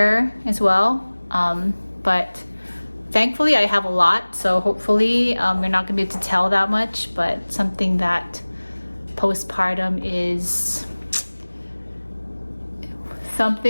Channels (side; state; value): both; inverted; correlation -1.00